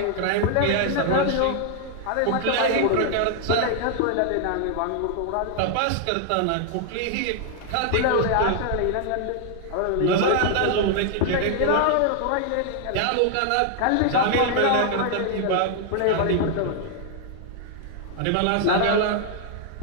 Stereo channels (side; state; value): both; different; correlation 0.00